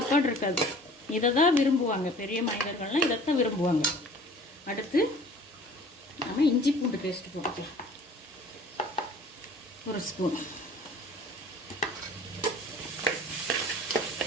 இருக்காது. இதை தான் விரும்புவாங்க. பெரிய மனிதர்கள்லாம் இதைத்தான் விரும்புவாங்க. அடுத்து நம்ம இஞ்சி பூண்டு பேஸ்ட் போட்டுக்கலாம், 1 ஸ்பூன்.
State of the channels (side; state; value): both; normal; correlation 0.48